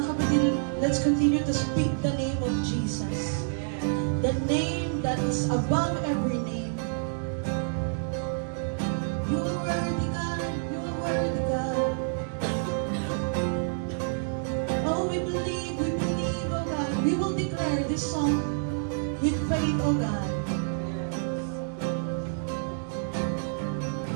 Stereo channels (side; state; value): left; silent; digital silence